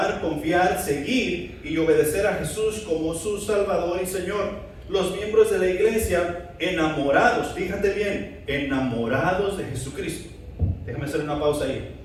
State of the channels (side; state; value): both; identical; correlation 1.00